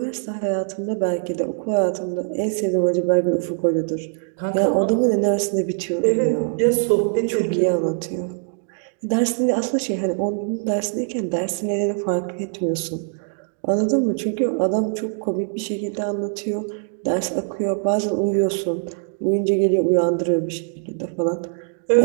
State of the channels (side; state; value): left; silent; digital silence